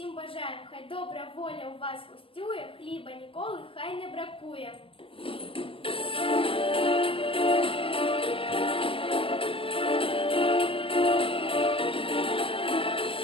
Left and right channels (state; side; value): late; right; 0.26 ms